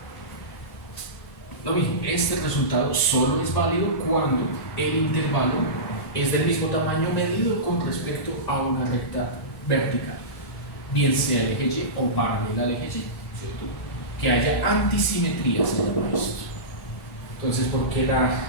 Lo mismo, este resultado solo es válido cuando el intervalo es del mismo tamaño medido con respecto a una recta vertical, bien sea el eje Y o paralela al eje Y, ¿cierto? Que haya antisimetría, se llama esto. Entonces, ¿por qué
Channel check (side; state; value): right; late; 1.7 ms